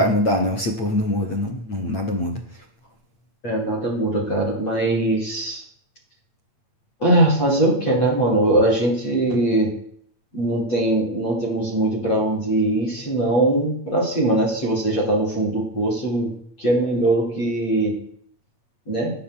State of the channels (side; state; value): right; late; 8.7 ms